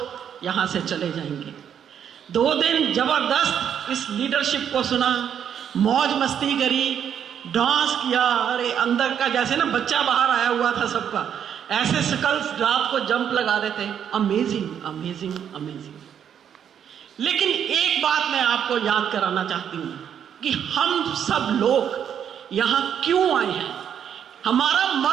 यहाँ से चले जाएंगे। 2 दिन जबरदस्त इस लीडरशिप को सुना, मौज मस्ती करी, डांस किया। अरे अंदर का जैसे ना बच्चा बाहर आया हुआ था सबका, ऐसे स्कल्स रात को जंप लगा रहे थे। Amazing amazing amazing. लेकिन एक बात मैं आपको याद कराना चाहती हूँ कि हम सब लोग यहाँ क्यों आए हैं, हमारा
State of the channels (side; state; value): left; quieter; 8.7 dB